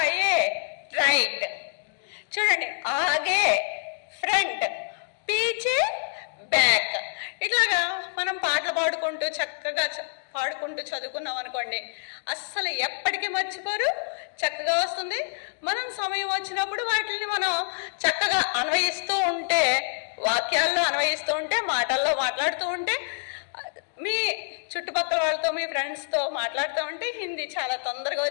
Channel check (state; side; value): silent; right; digital silence